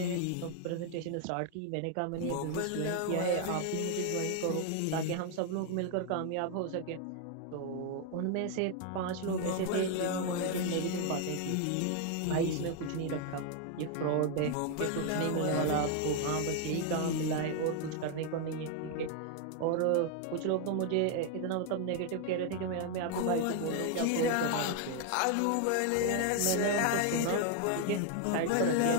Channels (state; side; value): different; both; correlation 0.00